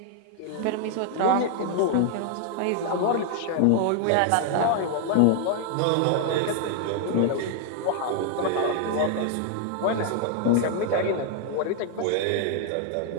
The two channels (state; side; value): different; both; correlation 0.00